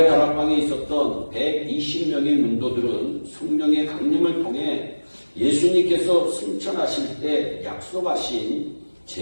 다락방에 있었던 120명의 문도들은 성령의 강림을 통해 예수님께서 승천하실 때 약속하신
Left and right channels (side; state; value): both; inverted; correlation -1.00